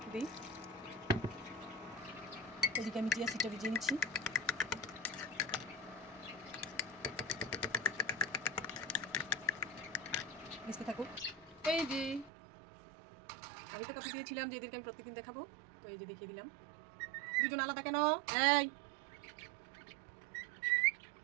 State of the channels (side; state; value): left; drops out; at 12.3 s